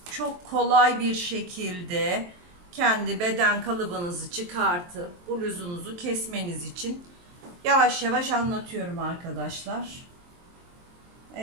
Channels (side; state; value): left; late; 23 ms